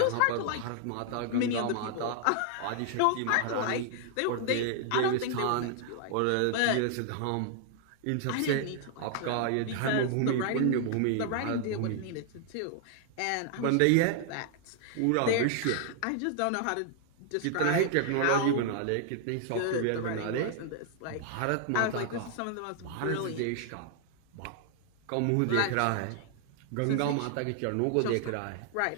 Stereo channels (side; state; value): both; different; correlation 0.00